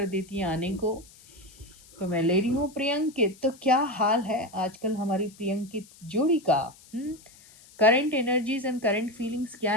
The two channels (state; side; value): noise; left; hiss, 24 dB below the sound